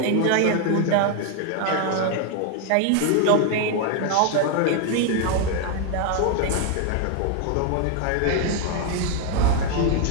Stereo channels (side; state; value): both; different; correlation 0.01